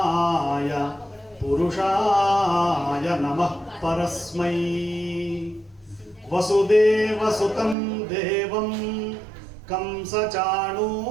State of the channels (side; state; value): left; drops out; at 7.8 s